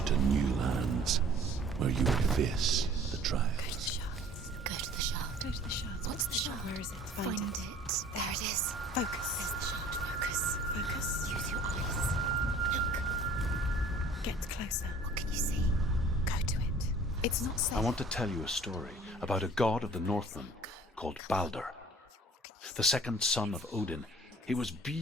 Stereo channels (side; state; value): both; normal; correlation 0.51